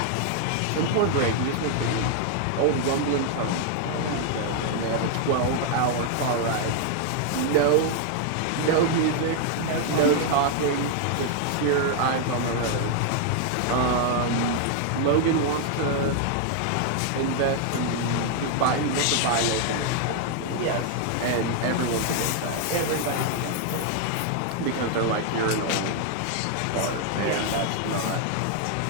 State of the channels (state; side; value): different; both; correlation 0.00